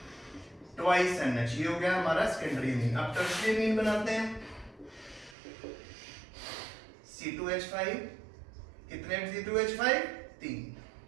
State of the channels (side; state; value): left; drops out; at 5.4 s